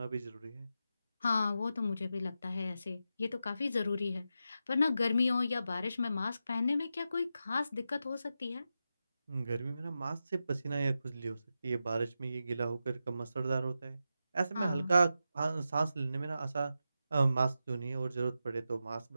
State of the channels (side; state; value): both; inverted; correlation -0.89